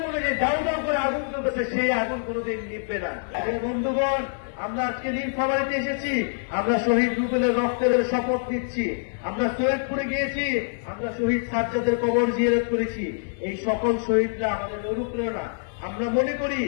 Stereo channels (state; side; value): silent; right; digital silence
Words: মনে যে দাউ দাউ করে আগুন চলতেছে সেই আগুন কোনোদিন নিভবে না। বন্ধুগণ, আমরা আজকে নীলফামারীতে এসেছি, আমরা শহীদ রুবেলের রক্তের শপথ নিচ্ছি। আমরা সৈয়দপুরে গিয়েছি, আমরা শহীদ সাজ্জাদের কবর জিয়ারত করেছি। এই সকল শহীদরা আমাদের অনুপ্রেরণা। আমরা মনে করি